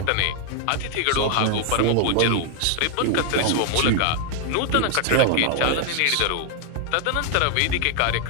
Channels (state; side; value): different; both; correlation 0.00